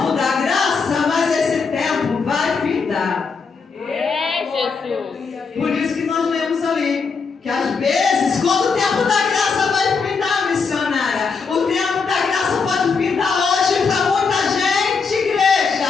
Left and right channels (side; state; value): right; quieter; 5.1 dB